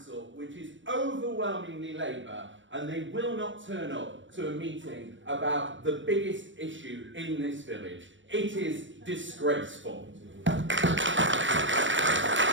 which is overwhelmingly Labour, and they will not turn up to a meeting about the biggest issue in this village. It is disgraceful.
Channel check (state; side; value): late; left; 0.55 ms